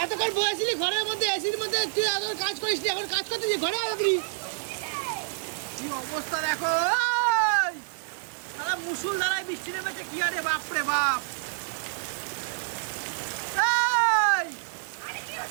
এতক্ষণ বসেছিলি ঘরের মধ্যে, এসির মধ্যে, তুই এত কাজ করিস নি, এখন কাজ করতেছিস ঘরে আয় দাদি। কি অবস্থা দেখো, সারা মুসুল ধারায় বৃষ্টি নেমেছে, কি আরে বাপরে বাপ।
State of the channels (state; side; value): silent; left; 59 dB below the other